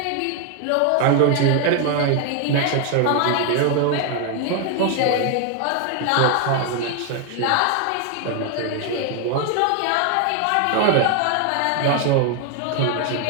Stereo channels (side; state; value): both; different; correlation 0.01